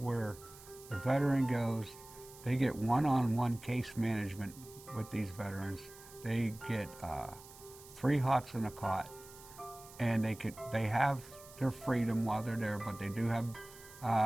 the veteran goes, they get one-on-one case management with these veterans. They get 3 hots and a cot, and they have their freedom while they're there, but they do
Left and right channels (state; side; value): noise; right; hiss, 19 dB below the sound